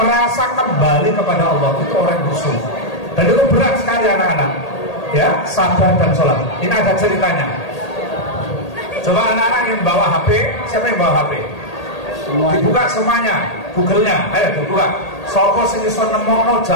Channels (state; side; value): late; right; 1.8 ms